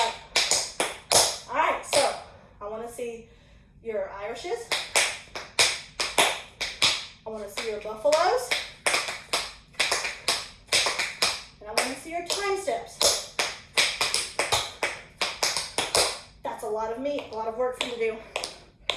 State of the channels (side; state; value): both; identical; correlation 1.00